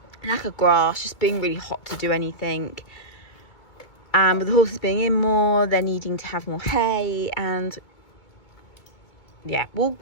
lack of grass, just being really hot to do anything. And with the horses being in more, they're needing to have more hay. And yeah, we'll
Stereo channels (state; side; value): late; right; 2.2 ms